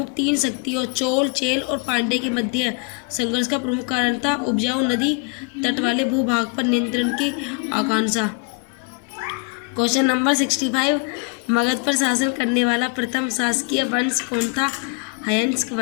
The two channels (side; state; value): right; quieter; 33.1 dB